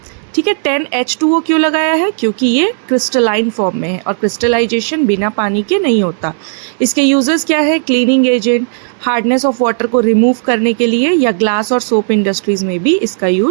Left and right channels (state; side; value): silent; left; digital silence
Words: ठीक है। 10H2O क्यों लगाया है? क्योंकि ये क्रिस्टलाइन फॉर्म में है और क्रिस्टलाइजेशन बिना पानी के नहीं होता। इसके यूजेस क्या है? Cleaning agent, hardness of water को रिमूव करने के लिए, या ग्लास और सोप इंडस्ट्रीज में भी इसका